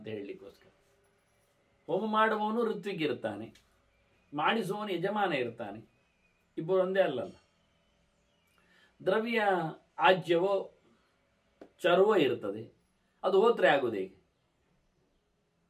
ಹೇಳಲಿಕ್ಕೋಸ್ಕರ. ಹೋಮ ಮಾಡುವವನು ಋತ್ವಿಗಿರ್ತಾನೆ, ಮಾಡಿಸುವವನು ಯಜಮಾನ ಇರ್ತಾನೆ, ಇಬ್ಬರು ಒಂದೇ ಅಲ್ಲಲ್ಲ. ದ್ರವ್ಯ ಆಜ್ಯವೋ ಚರ್ವೋ ಇರ್ತದೆ, ಅದು ಹೋತ್ರೆ ಆಗುವುದು ಹೇಗೆ?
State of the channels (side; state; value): both; identical; correlation 1.00